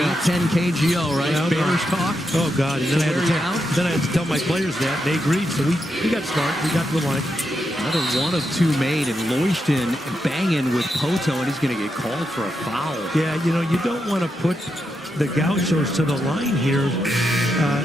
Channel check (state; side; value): normal; both; correlation 0.84